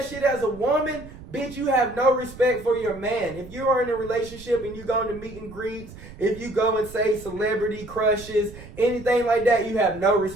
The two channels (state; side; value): noise; right; rumble, 16 dB below the sound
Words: shit as a woman, bitch, you have no respect for your man. If you are in a relationship and you go into meet and greets, if you go and say celebrity crushes, anything like that, you have no